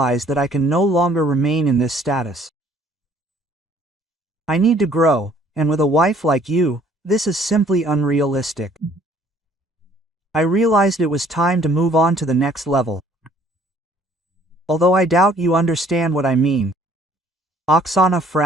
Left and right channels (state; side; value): normal; both; correlation 0.59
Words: that I can no longer remain in this status. I need to grow, and with a wife like you, this is simply unrealistic. I realized it was time to move on to the next level. although I doubt you understand what I mean. Oksana